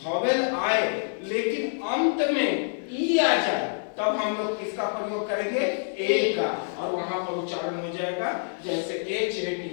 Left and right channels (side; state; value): right; silent; digital silence